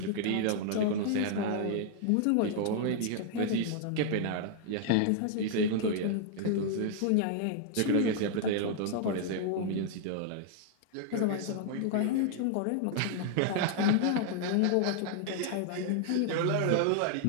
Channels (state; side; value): different; both; correlation -0.01